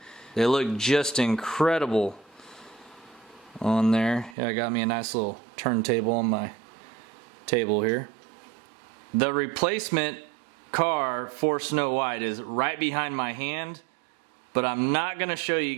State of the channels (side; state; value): left; drops out; at 4.4 s